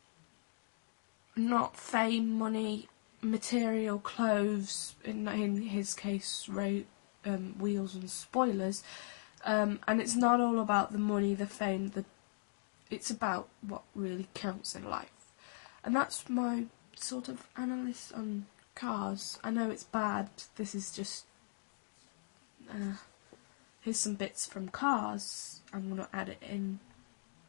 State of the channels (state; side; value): silent; right; digital silence